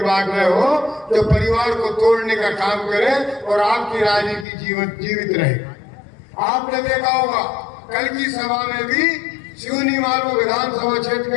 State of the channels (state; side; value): drops out; right; at 4.5 s